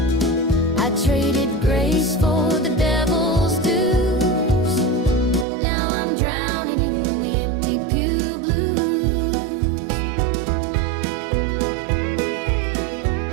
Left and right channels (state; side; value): drops out; left; at 5.5 s